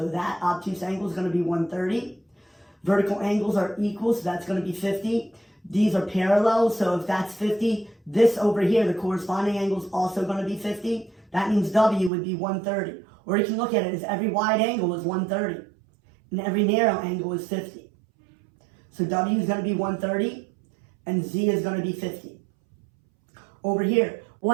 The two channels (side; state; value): left; drops out; at 12.1 s